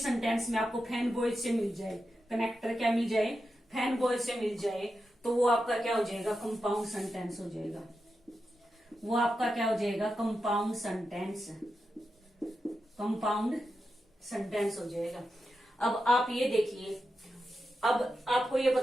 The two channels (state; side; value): normal; both; correlation 0.89